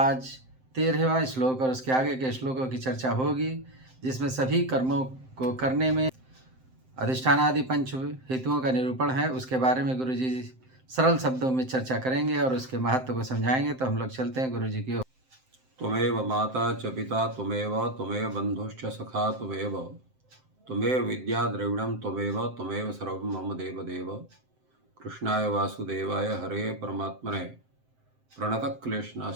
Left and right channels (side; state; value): left; late; 7.7 ms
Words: 13वां श्लोक और उसके आगे के श्लोकों की चर्चा होगी, जिसमें सभी कर्मों को करने में अधिष्ठानादि पंच हेतुओं का निरूपण है। उसके बारे में गुरु जी सरल शब्दों में चर्चा करेंगे और उसके महत्व को समझाएंगे। तो हम लोग चलते हैं गुरु जी की ओर। त्वमेव माता च पिता त्वमेव बंधुश्च सखा त्वमेव विद्या द्रविणं त्वमेव सर्वं मम देव। कृष्णाय वासुदेवाय हरे परमात्मने